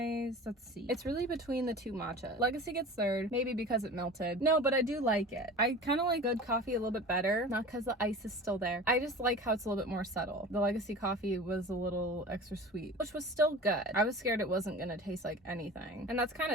let's see. It's really between the 2 matcha. Legacy gets 3rd, maybe because it melted. No, but I do like it. I kind of like good coffee a little bit better, not because the ice is still there. I just like how it's a little bit more subtle. The legacy coffee was a little extra sweet, which was still good. I was scared it wasn't going to taste like anything. And that's kind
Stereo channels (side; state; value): both; normal; correlation 0.37